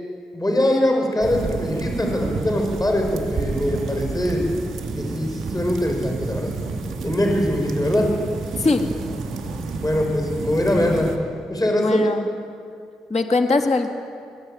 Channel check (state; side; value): normal; both; correlation 0.87